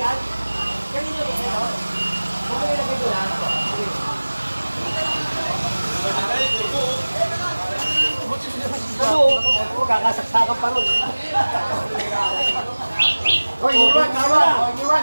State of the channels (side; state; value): both; inverted; correlation -1.00